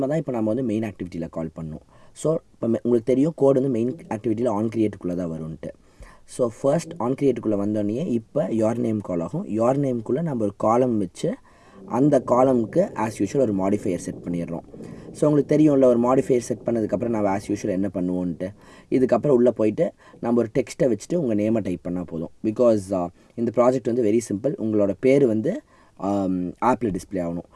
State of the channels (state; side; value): identical; both; correlation 1.00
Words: தான் இப்போ நம்ம வந்து மெயின் ஆக்டிவிட்டியில் கால் பண்ணணும். ஸோ இப்போ உங்களுக்கு தெரியும் கோட் வந்து மெயின் ஆக்டிவிட்டியில் ஆன் கிரியேட்டுக்குள்ளே தான் வரும்ன்ட்டு. ஸோ ஃபர்ஸ்ட் ஆன் கிரியேட்டுக்குள்ளே வந்தோடனே இப்போ யோர் நேம் கால் ஆகும். யோர் நேம்குள்ளே நம்ம ஒரு காலம் வச்சு அந்த காலமுக்கு ஆஸ் யூஷுவல் ஒரு மாடிஃபையர் செட் பண்ணிடுறோம். ஸோ உங்களுக்கு தெரியும்ல, ஒரு மாடிஃபையர் செட் பண்ணதுக்கப்புறம் நம்ம ஆஸ் யூஷுவல் என்ன பண்ணுவோன்ட்டு. இதுக்கப்புறம் உள்ளே போயிட்டு நம்ம ஒரு டெக்ஸ்ட்டை வச்சுட்டு உங்கள் நேமை டைப் பண்ணால் போதும். பிகாஸ் இந்த ப்ராஜெக்ட் வந்து வெரி சிம்பிள். உங்களோட பேர் வந்து ஆப்பில் டிஸ்பிளே ஆகணும்.